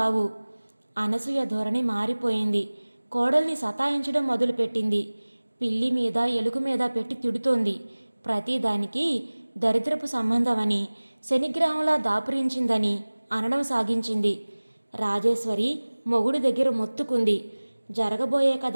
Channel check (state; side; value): inverted; both; correlation -1.00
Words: అనసూయ ధోరణి మారిపోయింది. కోడల్ని సతాయించడం మొదలుపెట్టింది. పిల్లి మీద ఎలుగు మీద పెట్టి తిడుతోంది. ప్రతిదానికి దరిద్రపు సంబంధమని, శనిగ్రహంలా దాపురించిందని అనడం సాగించింది. రాజేశ్వరి మొగుడి దగ్గర మొత్తుకుంది. జరగబోయే